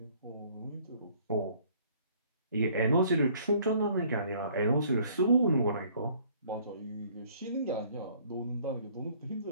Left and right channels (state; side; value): inverted; both; correlation -0.58